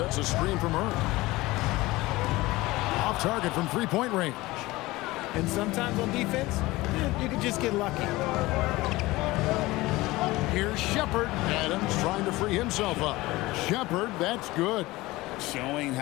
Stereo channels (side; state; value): right; quieter; 19.8 dB